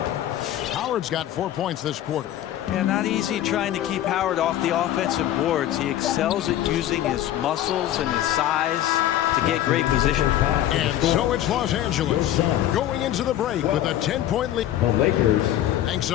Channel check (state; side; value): quieter; right; 12.4 dB